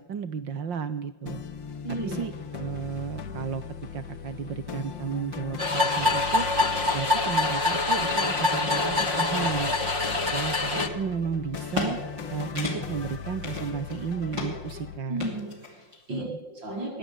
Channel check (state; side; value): late; left; 5.6 ms